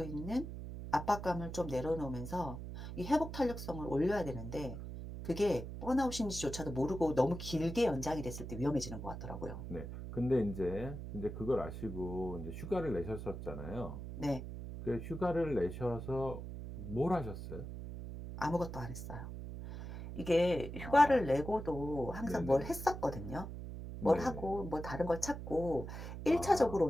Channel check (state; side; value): noise; right; hum, 8 dB below the sound